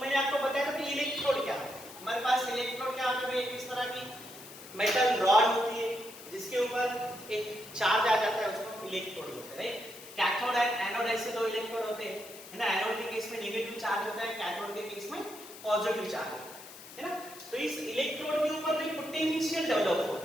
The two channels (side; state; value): left; noise; hiss, 16 dB below the sound